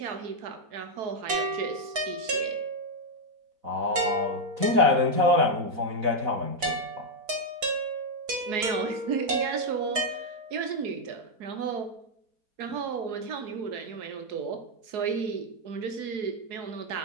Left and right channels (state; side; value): late; left; 4.5 ms